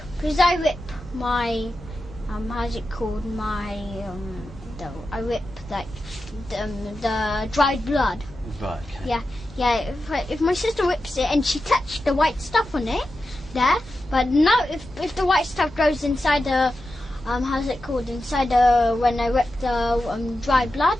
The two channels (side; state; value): both; normal; correlation 0.91